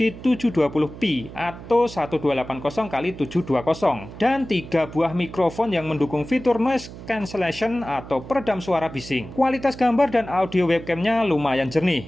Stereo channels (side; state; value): right; noise; hum, 14 dB below the sound